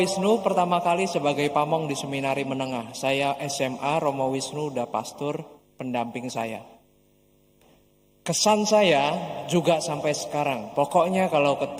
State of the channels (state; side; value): identical; both; correlation 1.00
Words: Wisnu pertama kali sebagai pamong di seminari menengah. Saya SMA, Romo Wisnu udah pastor pendamping saya. Kesan saya juga sampai sekarang, pokoknya kalau